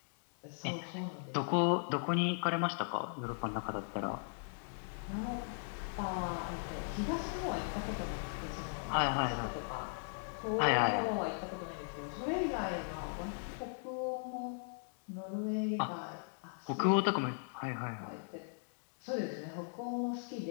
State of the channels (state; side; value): silent; right; digital silence